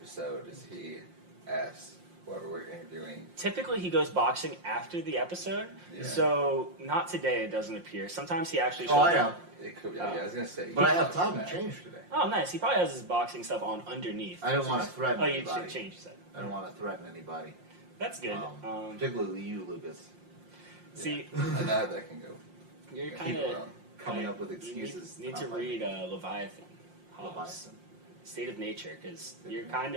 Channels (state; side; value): late; left; 5.7 ms